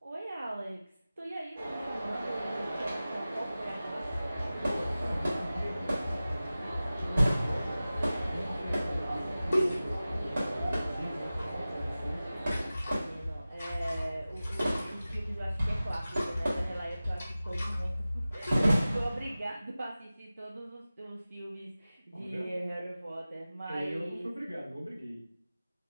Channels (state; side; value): inverted; both; correlation -0.96